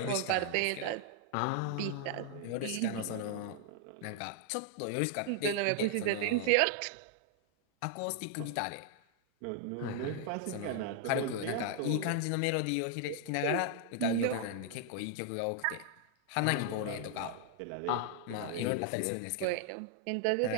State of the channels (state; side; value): different; both; correlation 0.00